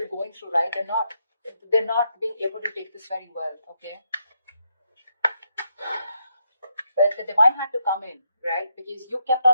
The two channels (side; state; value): both; inverted; correlation -0.79